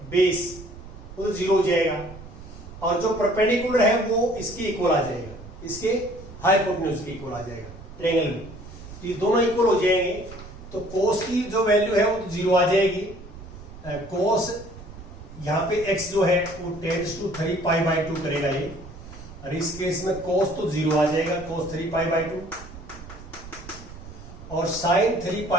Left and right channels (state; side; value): noise; right; rumble, 15 dB below the sound